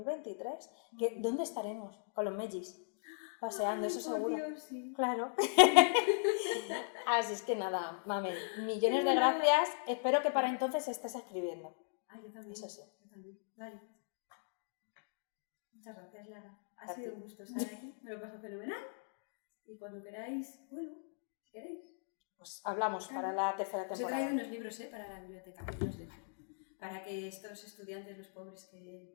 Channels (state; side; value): silent; right; digital silence